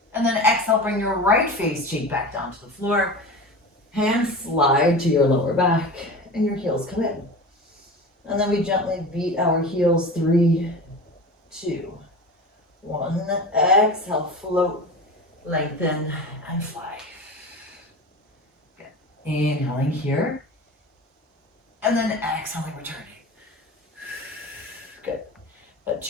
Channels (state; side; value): normal; both; correlation 0.32